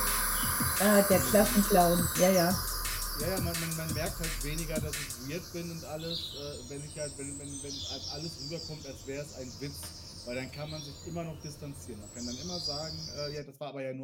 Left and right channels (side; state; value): both; identical; correlation 1.00